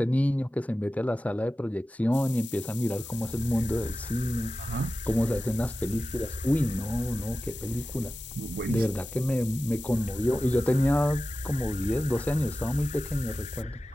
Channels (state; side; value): normal; both; correlation 0.94